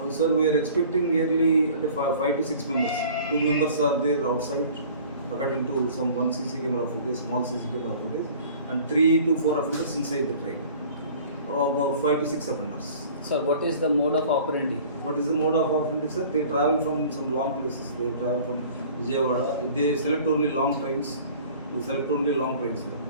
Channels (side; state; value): both; inverted; correlation -0.48